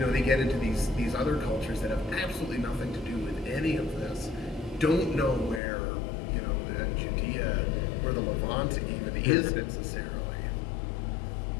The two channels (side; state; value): right; drops out; at 5.6 s